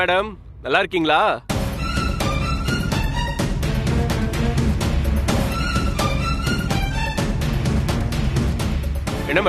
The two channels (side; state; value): both; identical; correlation 1.00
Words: நல்லா இருக்கீங்களா? என்ன